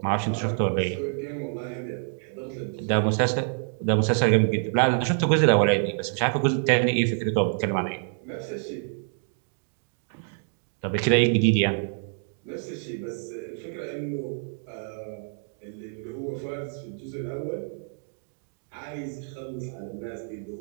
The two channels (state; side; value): silent; left; 60 dB below the other